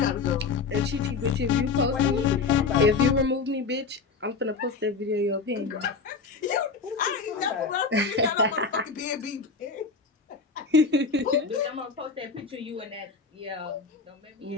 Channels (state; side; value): quieter; right; 4.7 dB